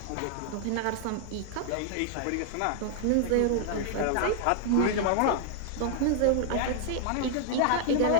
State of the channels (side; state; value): both; different; correlation 0.00